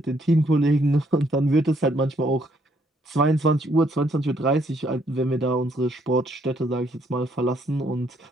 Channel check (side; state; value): both; normal; correlation 0.69